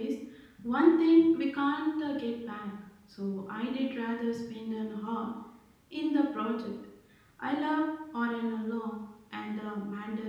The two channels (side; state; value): both; identical; correlation 1.00